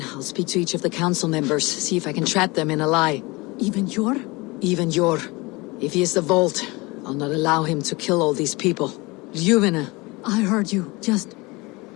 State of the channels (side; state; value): right; quieter; 24.1 dB